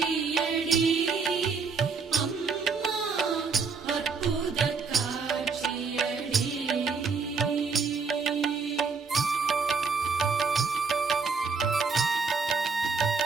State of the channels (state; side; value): quieter; left; 5.1 dB